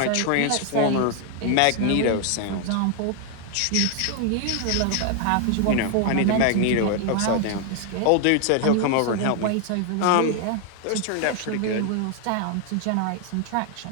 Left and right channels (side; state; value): both; different; correlation 0.00